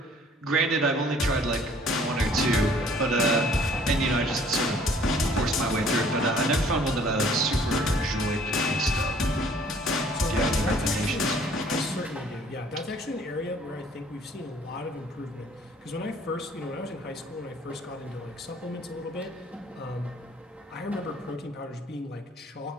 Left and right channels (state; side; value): normal; both; correlation 0.57